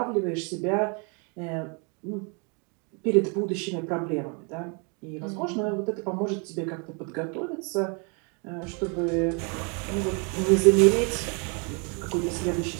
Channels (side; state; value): left; quieter; 34.9 dB